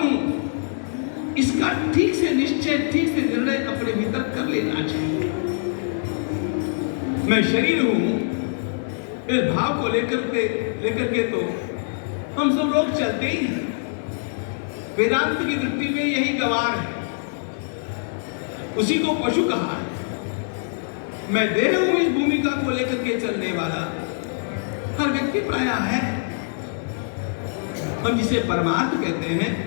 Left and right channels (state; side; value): silent; right; digital silence